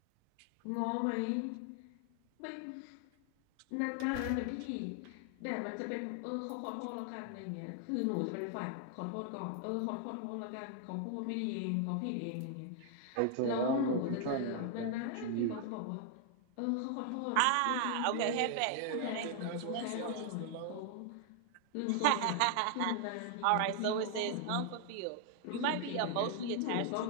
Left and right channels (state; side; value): different; both; correlation 0.00